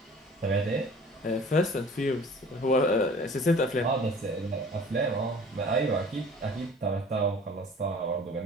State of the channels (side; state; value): both; normal; correlation 0.47